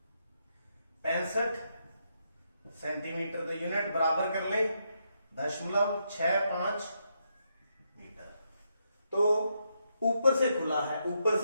65 सेंटीमीटर, तो यूनिट बराबर कर ले 0.65 मीटर। तो ऊपर से खुला है, ऊपर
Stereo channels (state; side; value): inverted; both; correlation -0.80